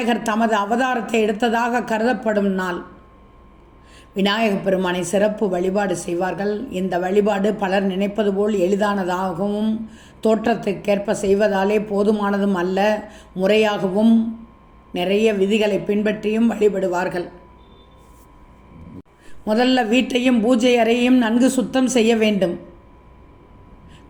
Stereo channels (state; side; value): identical; both; correlation 1.00